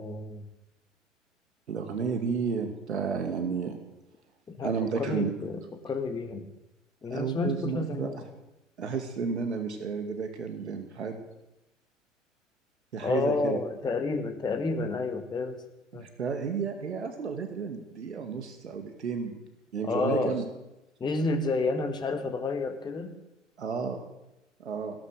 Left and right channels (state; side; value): normal; both; correlation 0.50